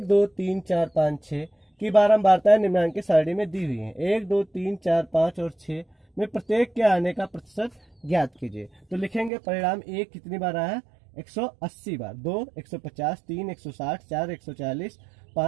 2 3 4 5 6 की बारंबारता निम्नांकित सारणी में दी हुई है। 1 2 3 4 5 और 6 में प्रत्येक के आने का प्रतिशत ज्ञात कीजिए। तो लिखेंगे परिणाम 1 कितनी बार आया? 180 बार, 2 150, 3 160, 4 140,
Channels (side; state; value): left; drops out; at 9.3 s